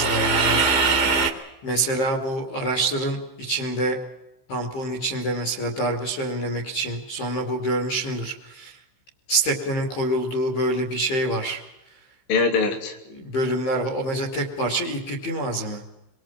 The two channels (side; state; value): right; late; 15 ms